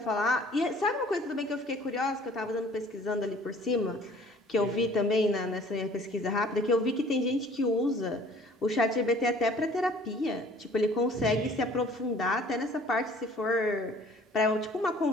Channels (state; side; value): normal; both; correlation 0.53